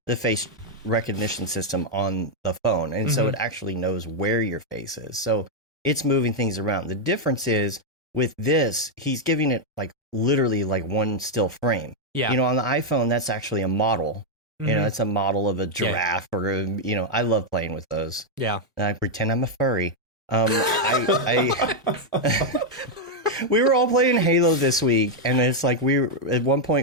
the face recognition system on the phone. And so it actually knows where your face is. So it's moving things around. The difference is with this, he's giving it like literally like one still frame. Yeah. On the iPhone, that's actually a model. It's a model of a giraffe or, I love playing with those. Yeah. And I pretend I'm a furry. We were all playing Halo this week, and it's like at one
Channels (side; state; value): both; normal; correlation -0.01